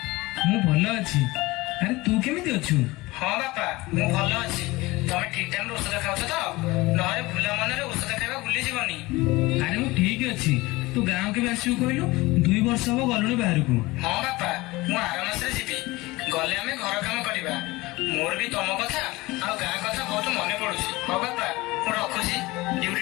ମୁଁ ଭଲ ଅଛି। ଆରେ ତୁ କେମିତି ଅଛୁ? हाँ बापा मु भल अछि। तमे ठीक टाइम रे औषध खाउछ त? नहरे भूला मनरे औषध खाइबा भूली जीवनी। ଆରେ ମୁଁ ଠିକ ଅଛି। ତୁ ଗାଁ କେବେ ଆସିବୁ କହିଲୁ? 2 ବର୍ଷ ହବ ଗଲୁଣି ବାହାରକୁ। हाँ बापा मु आर मासरे जीवी। गले आमे घर काम करिबा। मोर भी तम कथा आ गां कथा बहुत मने पडुछि। हो बापा मु रखुछि, ड्यूटी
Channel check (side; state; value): right; quieter; 21.0 dB